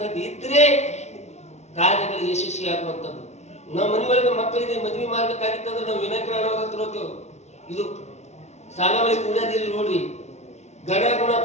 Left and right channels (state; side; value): late; right; 0.32 ms